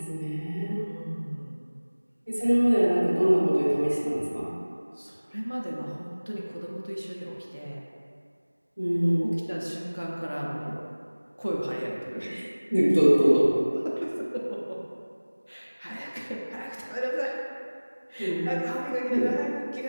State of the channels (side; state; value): both; inverted; correlation -1.00